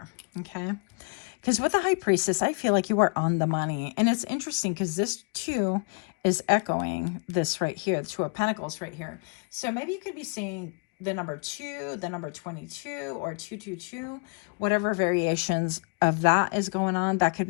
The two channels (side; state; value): right; quieter; 36.0 dB